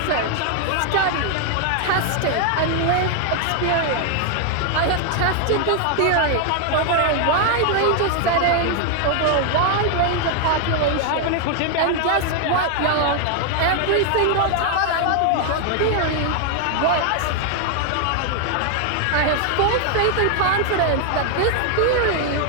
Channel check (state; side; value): different; both; correlation 0.00